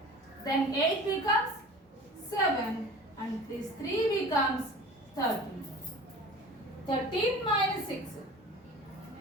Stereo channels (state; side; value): normal; both; correlation 0.40